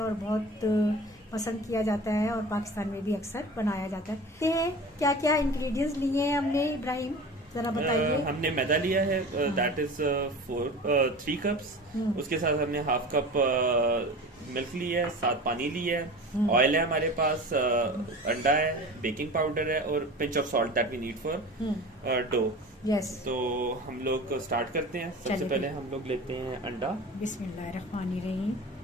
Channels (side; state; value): both; normal; correlation 0.35